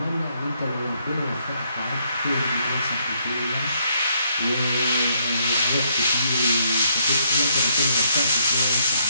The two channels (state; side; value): inverted; both; correlation -0.71